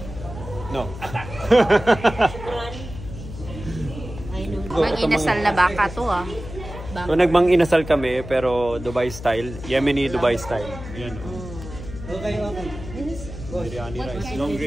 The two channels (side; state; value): left; noise; hum, 12 dB below the sound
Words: No. Mag-inasal na baka to ah. So nagmang inasal kami pero Dubai style, Yemeni Dubai style. Yan. Okay. Biryani rice,